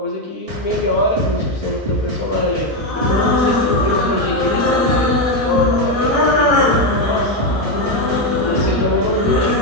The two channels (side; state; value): both; normal; correlation 0.07